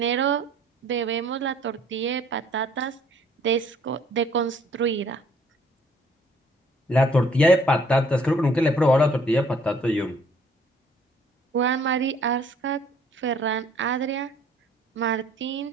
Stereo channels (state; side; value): normal; both; correlation 0.59